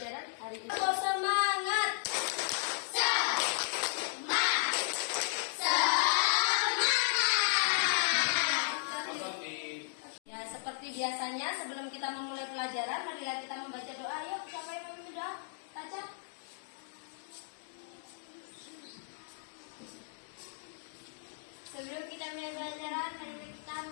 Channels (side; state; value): right; silent; digital silence